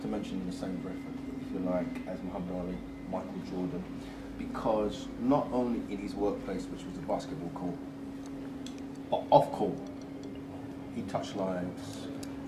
to mention in the same breath, if you like, as Muhammad Ali, Michael Jordan, because not only in his workplace, which was the basketball court, but off court, he touched lives.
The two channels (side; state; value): both; identical; correlation 1.00